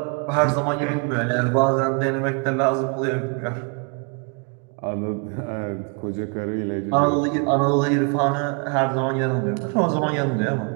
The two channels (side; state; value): left; quieter; 35.1 dB